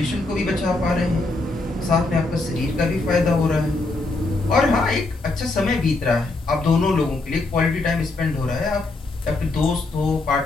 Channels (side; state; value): right; quieter; 3.2 dB